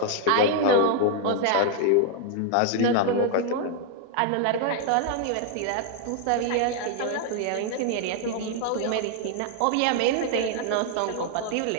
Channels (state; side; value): different; both; correlation 0.00